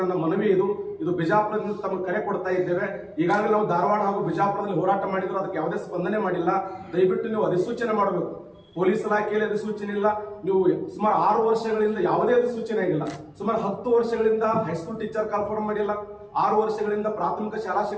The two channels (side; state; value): both; identical; correlation 1.00